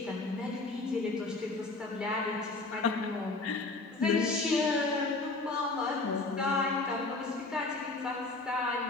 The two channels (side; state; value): right; quieter; 3.4 dB